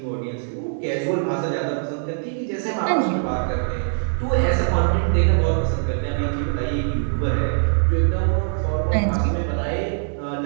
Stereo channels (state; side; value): silent; left; 64 dB below the other